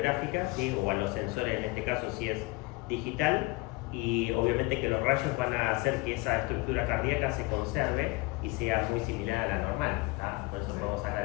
¿sí? O a los sensores, en este caso si es digital, y obviamente que los rayos van a hacer que esa estructura cardíaca se conserve y sea muy similar a la normal, ¿tá? Por eso podemos sacar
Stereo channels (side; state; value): right; quieter; 23.2 dB